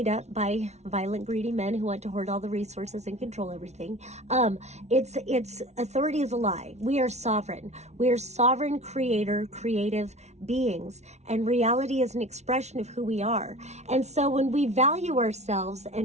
up by violent, greedy men who want to hoard all the resources and control everything. It's authority is a lie. We are sovereign. We are sovereign creator, creative beings. And reality is an expression of who we are. And so when we value ourselves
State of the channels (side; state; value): left; late; 0.32 ms